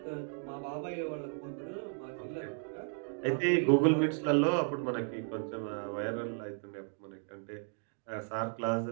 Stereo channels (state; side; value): silent; left; 55 dB below the other